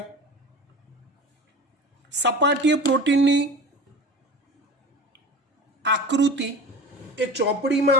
સપાટીય પ્રોટીનની આકૃતિ એ ચોપડીમાં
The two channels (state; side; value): normal; both; correlation 0.35